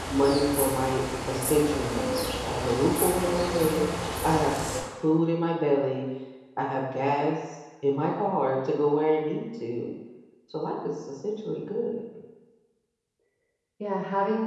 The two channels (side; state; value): both; identical; correlation 1.00